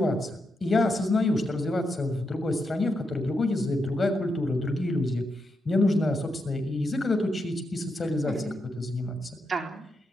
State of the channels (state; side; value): normal; both; correlation 0.83